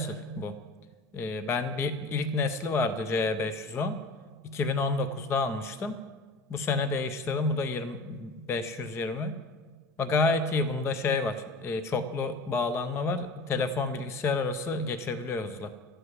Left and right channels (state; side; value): quieter; right; 3.0 dB